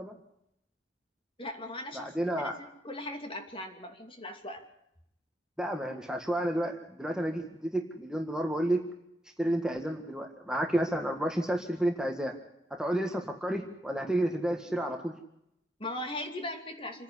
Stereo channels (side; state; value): both; normal; correlation 0.80